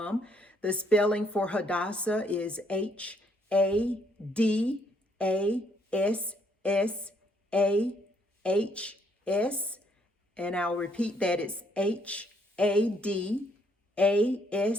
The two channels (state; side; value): normal; both; correlation 0.70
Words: The spelling for Hadassah is Hadassahs. And I'll repeat that, it's Hadassahs,